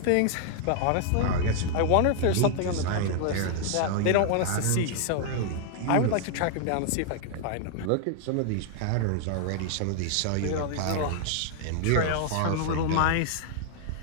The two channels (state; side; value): different; both; correlation 0.00